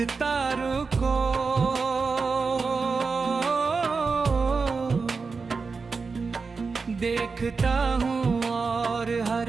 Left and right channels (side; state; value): left; quieter; 4.6 dB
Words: को देखता हूँ और हर